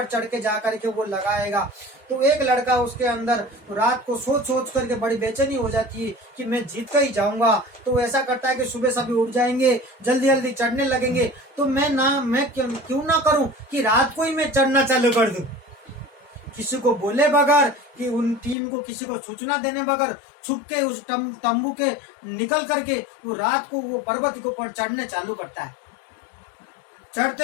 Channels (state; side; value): drops out; right; at 18.6 s